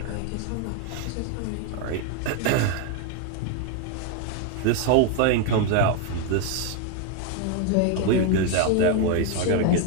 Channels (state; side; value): different; both; correlation 0.01